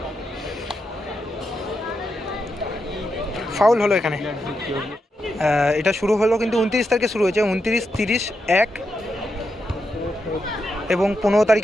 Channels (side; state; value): both; normal; correlation 0.85